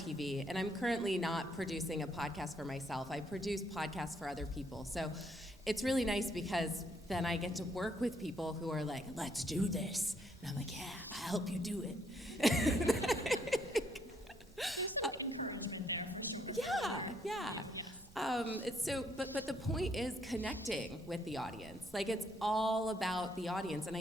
and I'm currently not producing a podcast for myself. I produce podcasts for other people. So it's really nice because then I get to work with people who are like, let's do this. And I'm like, yeah, I'll help you do it. Encouragement there, for sure. Yeah. But the point is connecting with the audience. It's all about the audience. And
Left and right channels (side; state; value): both; normal; correlation 0.71